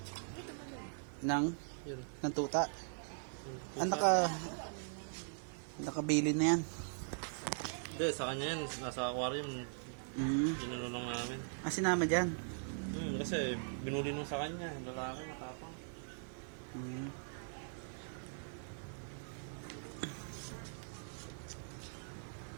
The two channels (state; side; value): silent; left; 51 dB below the other